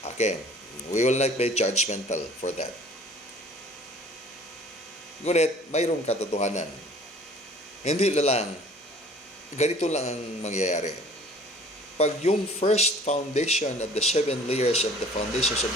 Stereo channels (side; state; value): both; normal; correlation 0.50